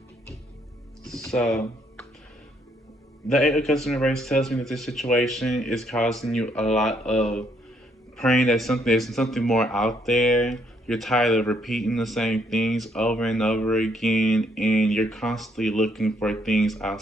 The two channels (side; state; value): both; normal; correlation 0.70